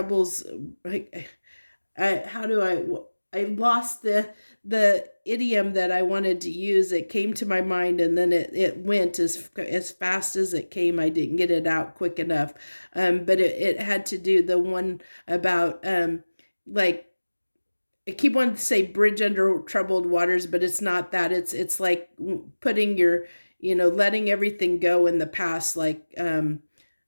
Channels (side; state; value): both; inverted; correlation -1.00